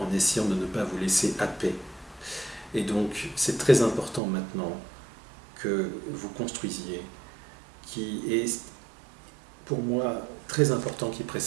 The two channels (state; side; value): drops out; left; at 4.2 s